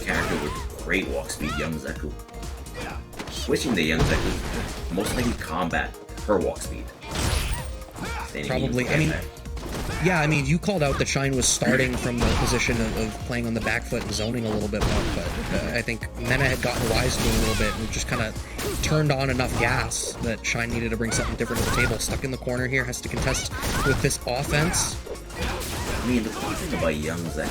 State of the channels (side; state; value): both; identical; correlation 1.00